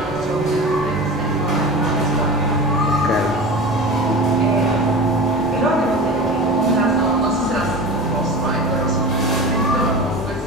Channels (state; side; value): normal; both; correlation 0.32